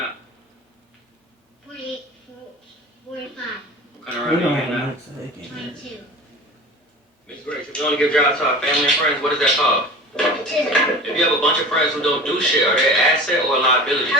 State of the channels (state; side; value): normal; both; correlation 0.36